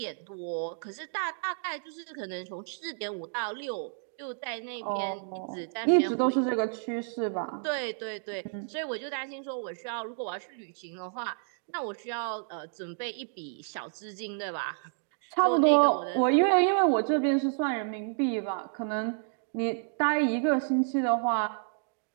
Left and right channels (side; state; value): left; silent; digital silence